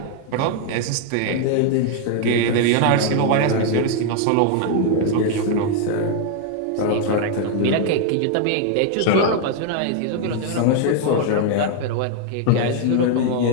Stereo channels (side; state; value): both; different; correlation 0.00